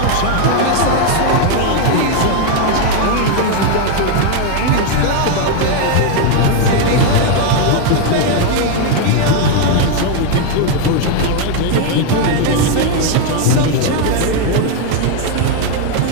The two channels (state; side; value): different; both; correlation 0.01